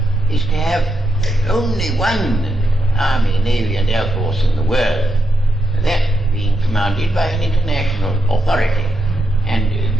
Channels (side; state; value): both; normal; correlation 0.84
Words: is to have only one army, navy and air force in the world, that being commanded by an international authority and